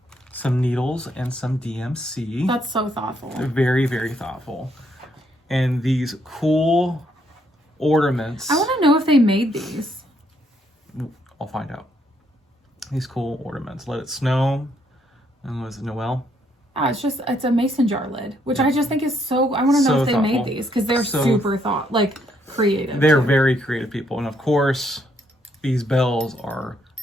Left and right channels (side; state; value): both; normal; correlation 0.72